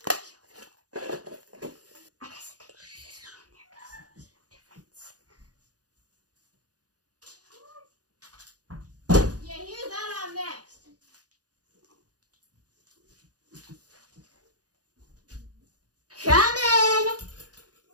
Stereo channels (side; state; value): left; late; 0.68 ms